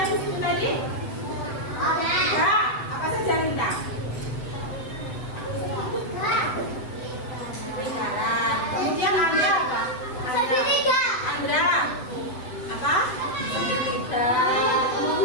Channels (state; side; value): late; right; 8.0 ms